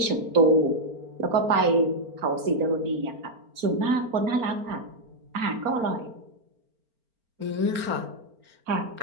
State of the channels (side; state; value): left; late; 4.4 ms